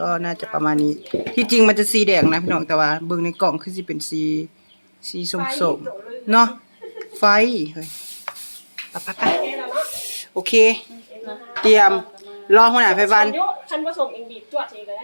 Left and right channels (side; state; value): both; inverted; correlation -1.00